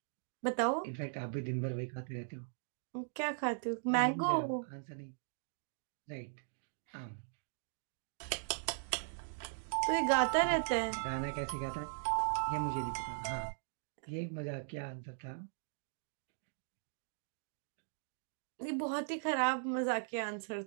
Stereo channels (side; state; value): left; silent; digital silence